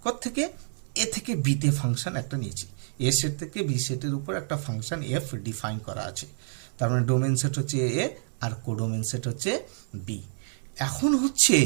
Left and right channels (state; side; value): silent; left; 59 dB below the other